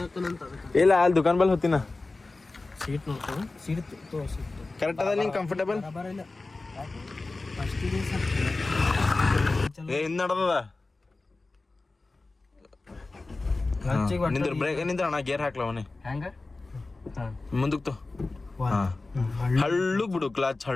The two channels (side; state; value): right; quieter; 3.4 dB